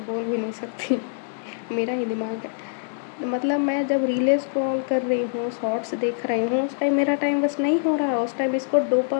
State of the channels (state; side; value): silent; right; digital silence